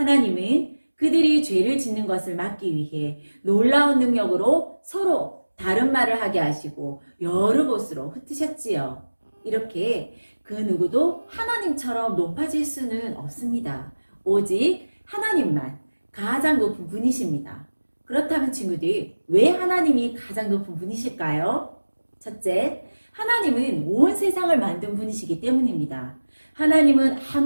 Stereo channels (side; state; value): both; inverted; correlation -1.00